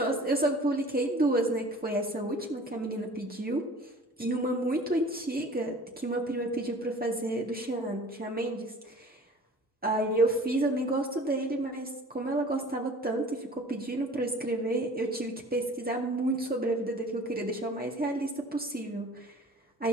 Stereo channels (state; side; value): normal; both; correlation 0.46